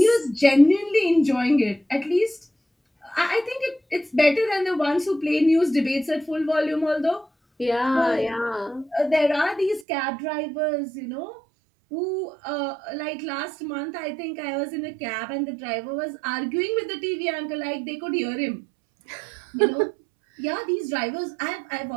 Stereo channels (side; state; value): left; drops out; at 9.9 s